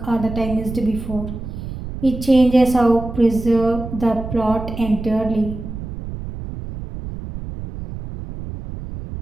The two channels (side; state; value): right; noise; rumble, 9 dB below the sound